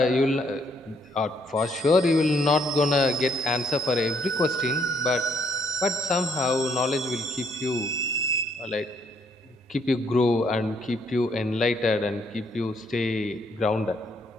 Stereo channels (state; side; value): normal; both; correlation 0.69